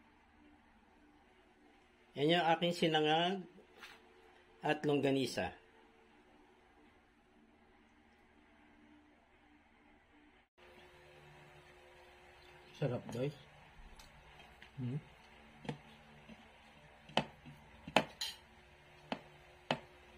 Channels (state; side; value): identical; both; correlation 1.00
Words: Yan yung aking sinangag at longganisa. Sarap, guys.